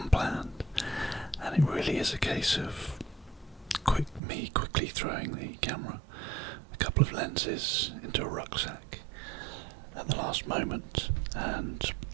and it really is a case of me quickly throwing the camera, a couple of lenses into a rucksack at the last moment, and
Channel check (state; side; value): drops out; left; at 4.2 s